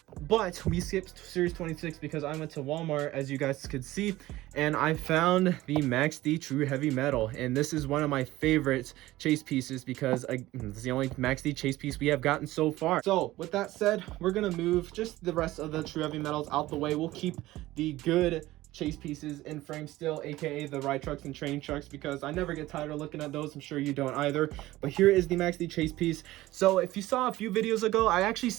But we skipped series 26 because I went to Walmart, as you guys could see, and I found the Max D True Heavy Metal. And this is one of my favorite chase pieces because it's the only Max D chase piece we have gotten so far. So with that said, we're gonna move just the rest of the True Heavy Metals out the way. We'll keep the good chase pieces in frame still, aka the ride trucks and training trucks, because I never get tired of looking at those. I'm sure you don't either. But here is the Max D chase piece. So if you saw a few videos ago, I actually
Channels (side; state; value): left; quieter; 17.0 dB